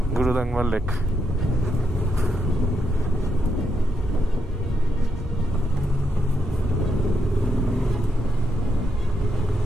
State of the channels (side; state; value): both; normal; correlation 0.81